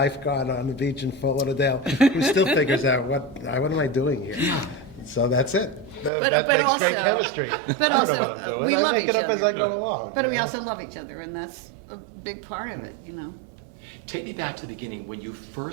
on the beach in Fort Lauderdale who still figures out what am I doing here. Yeah. So that's it. But that makes great also- chemistry. But I don't also, know what I'm doing. we I love make each it up as other. I go along. But you we know? also love each other, and that's a big part of it. Take me back to the beginning when you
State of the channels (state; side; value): drops out; left; at 6.1 s